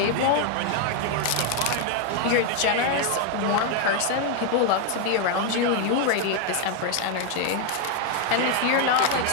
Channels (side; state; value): both; different; correlation 0.01